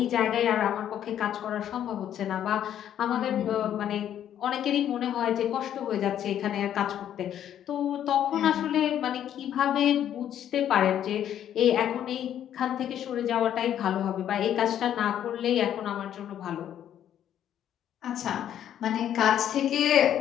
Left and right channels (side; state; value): right; quieter; 10.4 dB